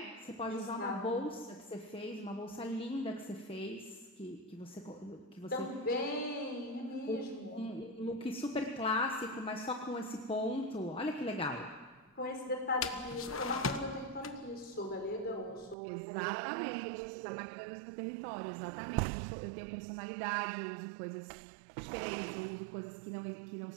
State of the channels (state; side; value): drops out; left; at 15.8 s